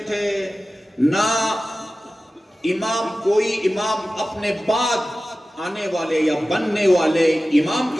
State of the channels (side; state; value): both; normal; correlation 0.96